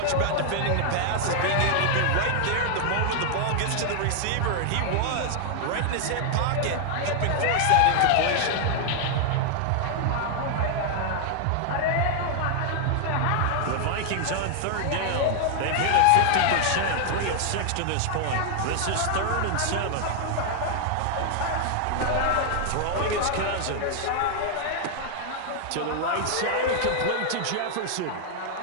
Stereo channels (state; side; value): different; both; correlation 0.00